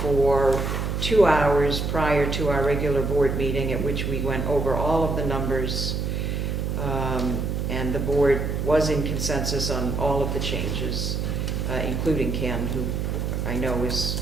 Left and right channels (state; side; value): noise; right; hum, 1 dB below the sound